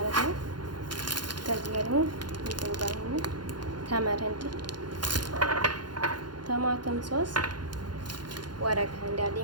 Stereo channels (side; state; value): left; late; 0.71 ms